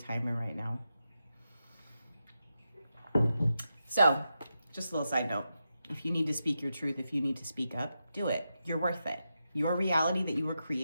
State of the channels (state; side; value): inverted; both; correlation -0.88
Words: right now. So, just a little side note. If you need to speak your truth, if you need to speak up, do it. You're worth it. Your reality that you are